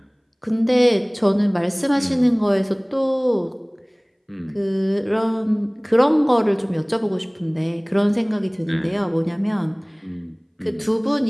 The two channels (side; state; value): both; identical; correlation 1.00